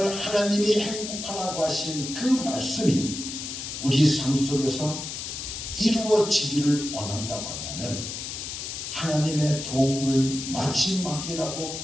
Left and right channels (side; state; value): left; noise; hiss, 7 dB below the sound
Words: 하나님이 행복하라고 하신 그 말씀이 우리 삶 속에서 이루어지기를 원한다고 한다면 하나님의 도움을 마지막이라고